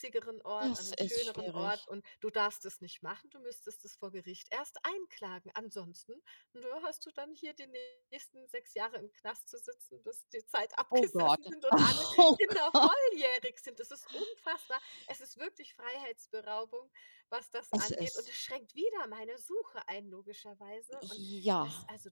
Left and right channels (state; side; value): inverted; both; correlation -1.00